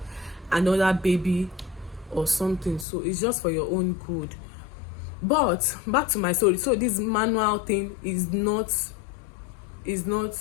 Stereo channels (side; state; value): right; drops out; at 2.9 s